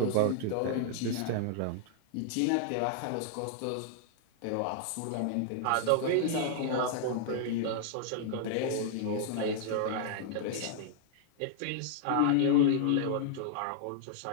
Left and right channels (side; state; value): both; different; correlation -0.01